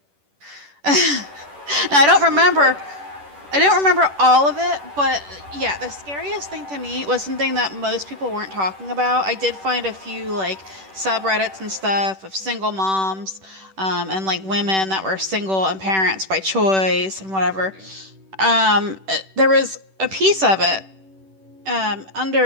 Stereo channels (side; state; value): left; late; 10 ms